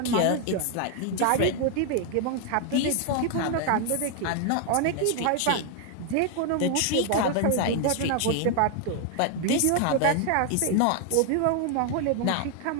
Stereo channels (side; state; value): both; different; correlation 0.00